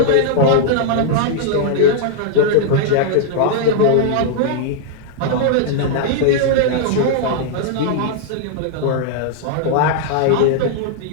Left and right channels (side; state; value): both; different; correlation -0.01